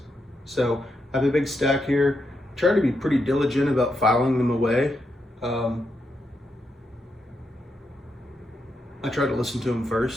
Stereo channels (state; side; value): normal; both; correlation 0.83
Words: So I have a big stack here. Try to be pretty diligent about filing them away. I try to listen to them